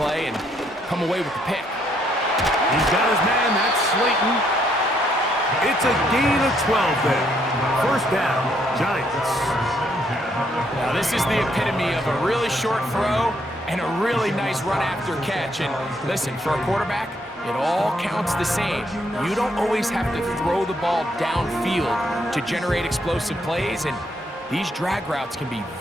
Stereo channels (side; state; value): both; normal; correlation 0.72